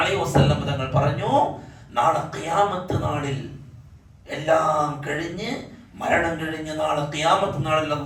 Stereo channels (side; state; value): both; identical; correlation 1.00